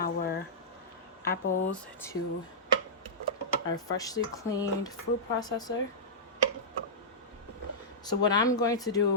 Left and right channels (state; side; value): normal; both; correlation -0.14